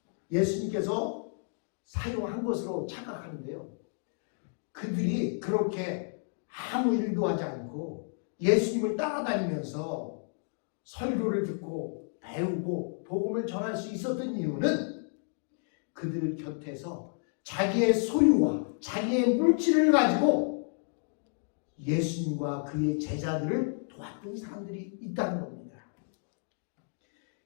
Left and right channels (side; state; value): right; silent; 57 dB below the other